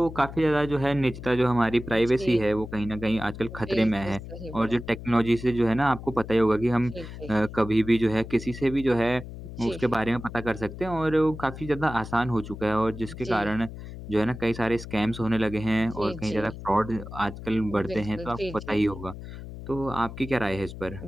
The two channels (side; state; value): left; noise; hum, 11 dB below the sound